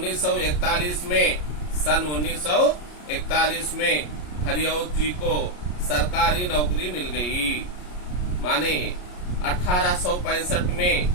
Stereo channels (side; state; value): right; late; 33 ms